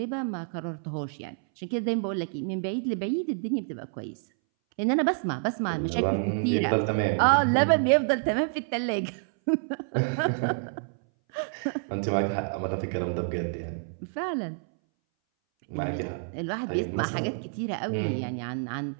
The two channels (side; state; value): left; silent; 59 dB below the other